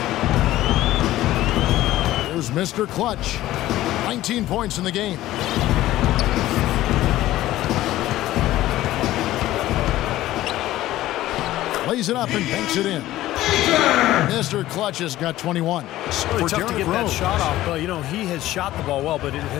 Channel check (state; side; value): quieter; right; 15.2 dB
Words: There's Mr. Clutch. 19 points in the game. Lays it up and banks it in. Mr. Clutch has got 21. It's really tough to get that shot off, but you know, he has shot the ball well, but it